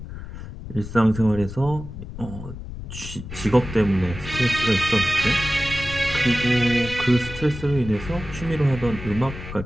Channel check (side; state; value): left; noise; rumble, 11 dB below the sound